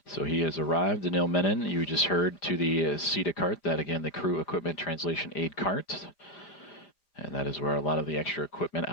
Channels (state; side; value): late; right; 5.0 ms